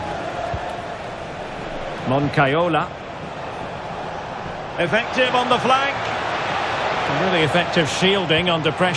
Moncayola. Effective on the flank. Really effective shielding under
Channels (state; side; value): identical; both; correlation 1.00